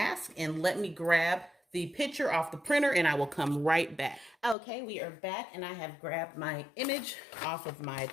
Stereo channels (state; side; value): drops out; right; at 4.5 s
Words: and let me grab the picture off the printer and I will come right back. Okay, we are back and I have grabbed my image off of my